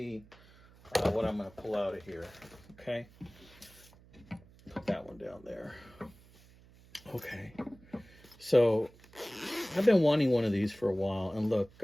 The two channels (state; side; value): noise; right; hum, 25 dB below the sound